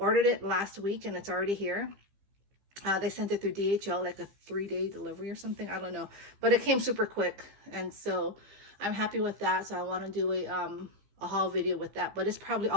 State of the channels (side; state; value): left; late; 15 ms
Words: it last week and it's already here. They sent it through DHL, like a 3-day delivery or something. I don't know, but it came super quick, and so I'm happy with that. So I want to do a haul video with that, but it's probably